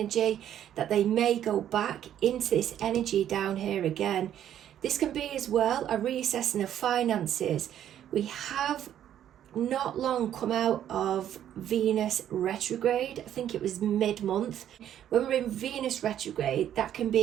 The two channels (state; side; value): quieter; left; 10.7 dB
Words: that they may go back into this energy down here again. This can be as well a reassessing of finances. We have not long come out of Venus retrograde. I think it was mid-month. When we're in Venus retrograde, that can